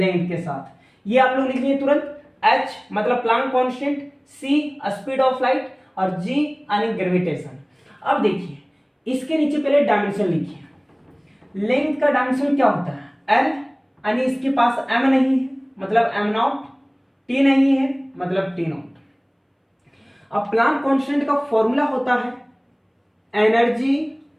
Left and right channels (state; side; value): identical; both; correlation 1.00